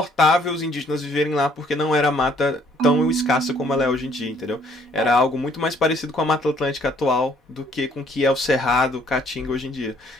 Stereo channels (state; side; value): normal; both; correlation 0.63